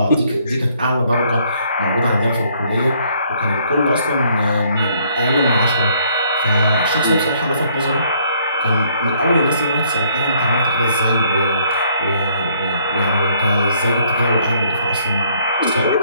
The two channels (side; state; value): both; inverted; correlation -0.65